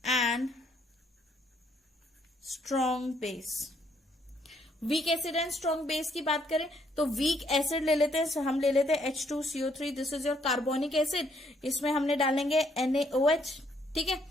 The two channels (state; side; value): normal; both; correlation 0.69